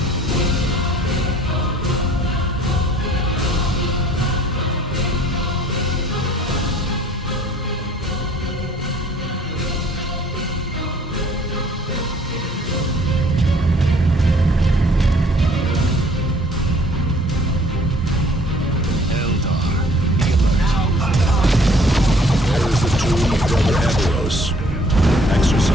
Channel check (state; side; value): normal; both; correlation 0.57